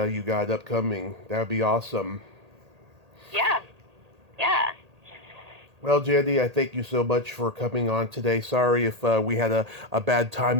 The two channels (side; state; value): left; late; 1.8 ms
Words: got upcoming. That would be awesome. Yeah. Yeah. Well, Jandy, I thank you so much for coming on today. Sorry if we had a bad